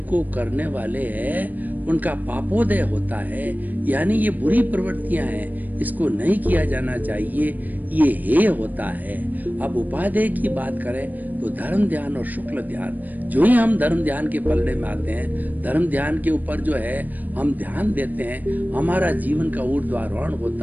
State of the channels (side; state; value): left; late; 0.084 ms